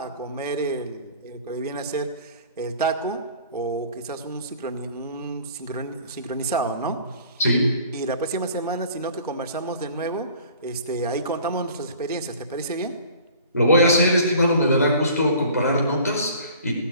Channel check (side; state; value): both; inverted; correlation -0.48